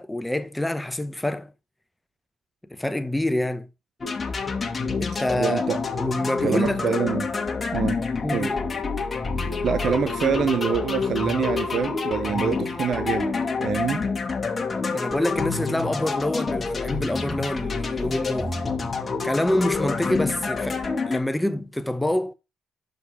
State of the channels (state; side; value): normal; both; correlation 0.83